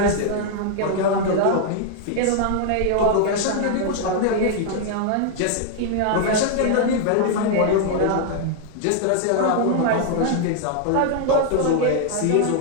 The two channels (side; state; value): both; different; correlation 0.00